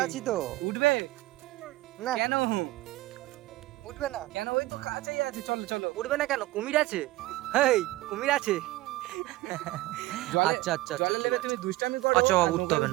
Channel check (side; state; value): left; quieter; 18.5 dB